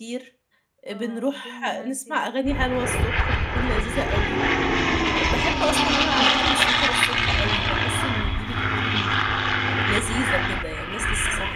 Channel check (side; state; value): both; identical; correlation 1.00